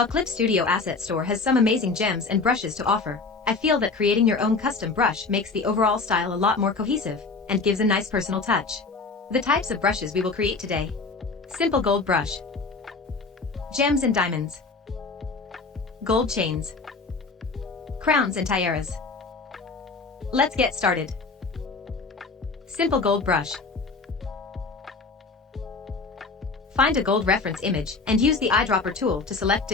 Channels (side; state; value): right; quieter; 4.1 dB